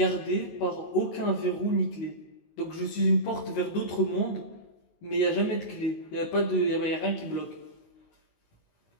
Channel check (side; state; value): right; late; 19 ms